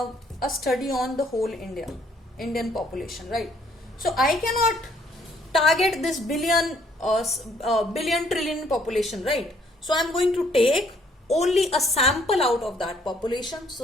study on the whole Indian population, right? So I cannot target this billion trillion population, right? So I'm going to take only a sample out of that population.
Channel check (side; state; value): both; normal; correlation 0.65